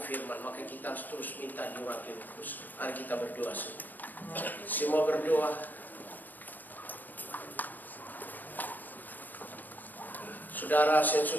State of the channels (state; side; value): late; right; 0.089 ms